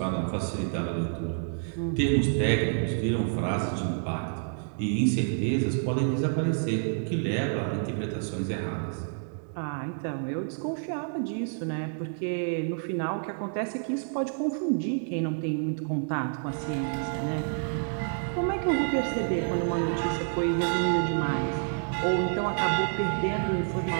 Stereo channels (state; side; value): silent; left; digital silence